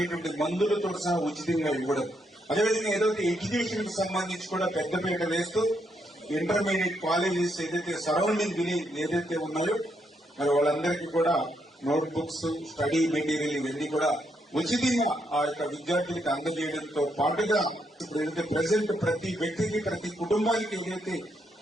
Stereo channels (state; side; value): normal; both; correlation 0.78